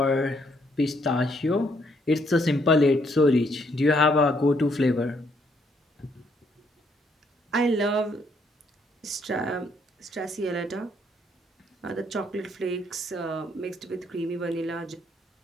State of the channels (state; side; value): normal; both; correlation 0.70